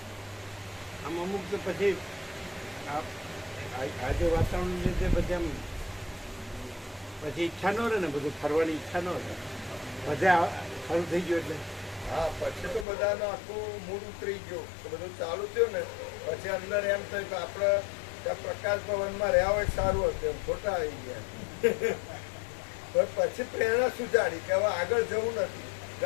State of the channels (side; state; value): right; drops out; at 12.9 s